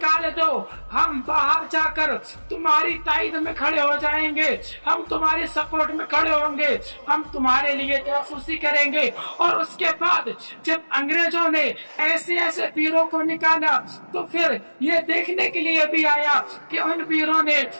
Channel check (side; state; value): both; inverted; correlation -1.00